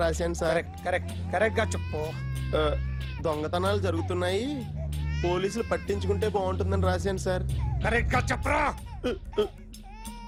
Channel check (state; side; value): identical; both; correlation 1.00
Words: రాశాను సార్. కరెక్ట్ గా చెప్పు. దొంగతనాలు జరుగుతున్నాయి, పోలీసులు పట్టించుకుంటే బాగుంటుందని రాశాను సార్. కరెక్ట్ గా చెప్పరా.